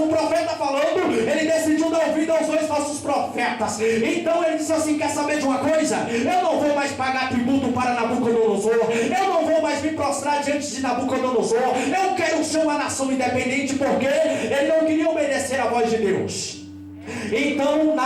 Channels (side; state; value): both; identical; correlation 1.00